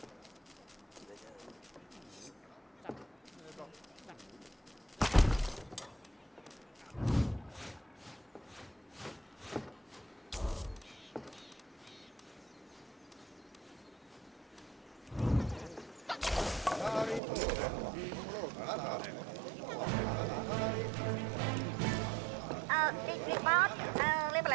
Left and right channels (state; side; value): drops out; left; at 17.2 s